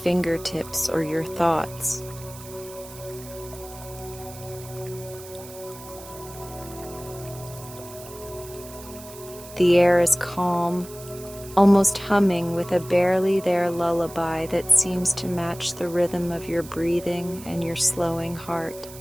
or your thoughts. The air is calm, almost humming with a barely there lullaby that seems to match the rhythm of your breathing and your slowing heart.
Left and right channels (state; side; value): noise; right; hiss, 17 dB below the sound